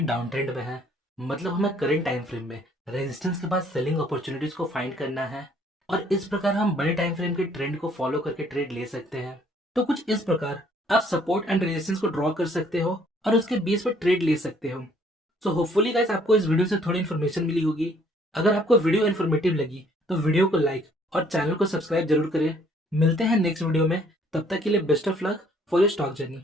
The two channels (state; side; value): normal; both; correlation 0.62